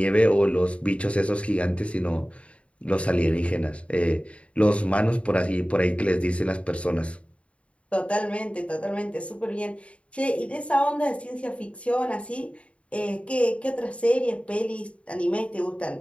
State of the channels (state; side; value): late; right; 0.062 ms